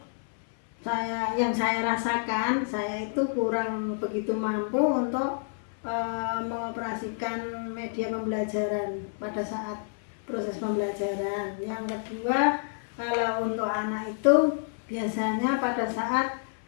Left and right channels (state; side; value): silent; right; 59 dB below the other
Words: yang saya rasakan saya itu kurang begitu mampu untuk mengoperasikan media pembelajaran pada saat proses pembelajaran. Yang kedua, kalau untuk anak itu biasanya pada saat